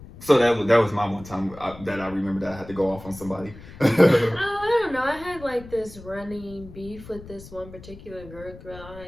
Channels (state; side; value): noise; left; rumble, 17 dB below the sound